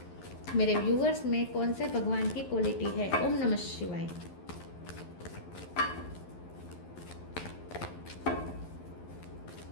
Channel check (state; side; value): late; right; 11 ms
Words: मेरे व्यूवर्स में कौन से भगवान की क्वालिटी है। ओम नमः शिवाय।